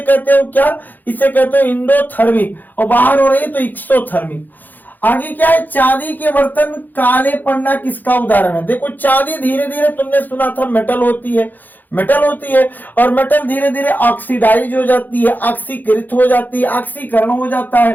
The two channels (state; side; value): late; right; 0.086 ms